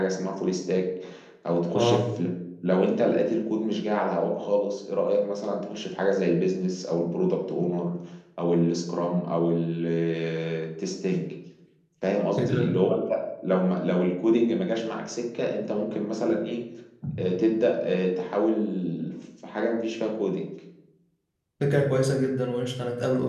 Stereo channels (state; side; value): identical; both; correlation 1.00